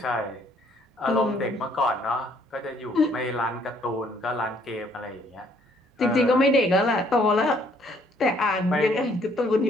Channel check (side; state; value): both; normal; correlation 0.64